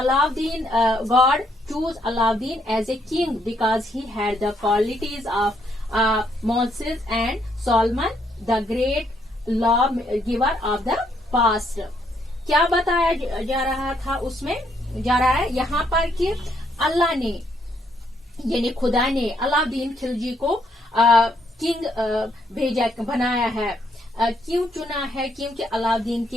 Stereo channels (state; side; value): normal; both; correlation 0.73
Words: God choose Alauddin as a king because he had the qualities of Moses and Solomon, the great law giver of the past। क्या बताया जा रहा था, उसमें जा रहा है यहाँ पर कि अल्लाह ने, यानी खुदा ने अलाउद्दीन खिलजी को किंग बनाया है। क्यों चुना है? क्योंकि अलाउद्दीन